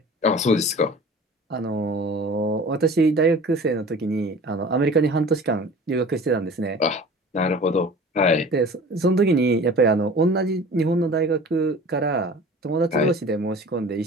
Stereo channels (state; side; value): normal; both; correlation 0.42